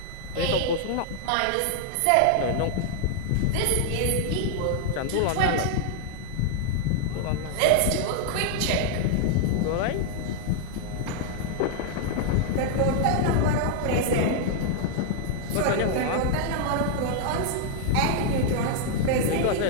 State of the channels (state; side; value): different; both; correlation 0.00